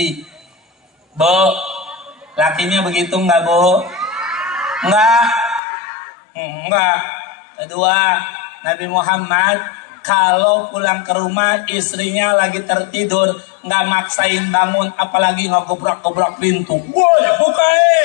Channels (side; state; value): right; drops out; at 5.6 s